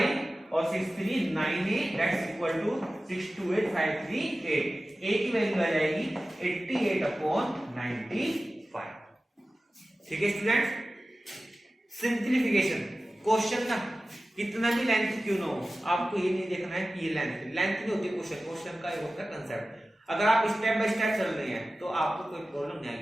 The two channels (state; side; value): normal; both; correlation 0.95